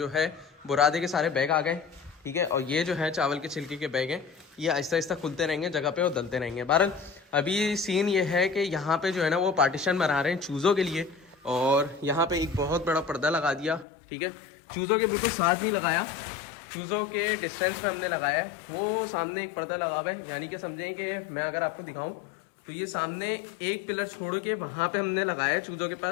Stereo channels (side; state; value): right; drops out; at 13.9 s